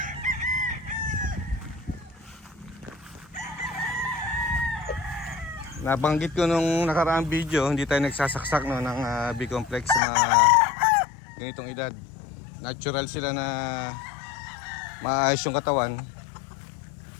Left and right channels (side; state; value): right; drops out; at 10.0 s